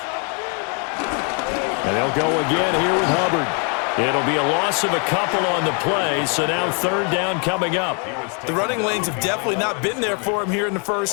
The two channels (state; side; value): quieter; right; 38.4 dB